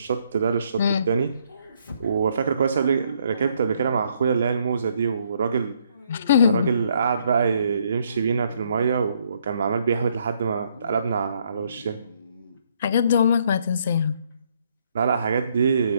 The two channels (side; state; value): both; inverted; correlation -0.70